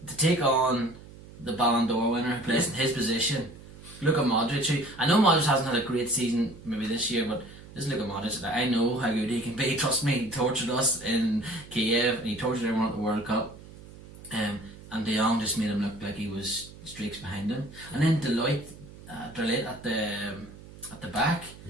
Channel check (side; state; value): right; noise; hum, 18 dB below the sound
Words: to take on the Ballon d'Or winner who plays in his position. Look at Modric, who, I know Modric hasn't had a great season maybe this year, but just look at Modric. I know how good he can be. Trust me, he tortured us in Kiev and he tortured everyone at the World Cup. And De Jong just made him look like he was streaks behind him. And then Deloitte at the back.